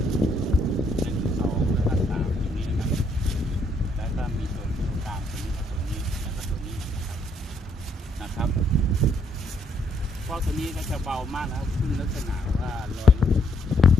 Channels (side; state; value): both; normal; correlation 0.71